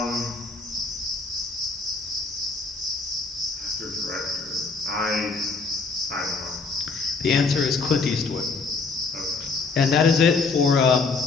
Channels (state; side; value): quieter; right; 4.3 dB